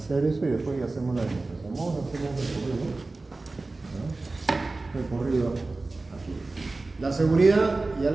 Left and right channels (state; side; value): quieter; left; 3.4 dB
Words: eso y después ya hacemos la demostración. Vamos a hacer un recorrido aquí. La seguridad ya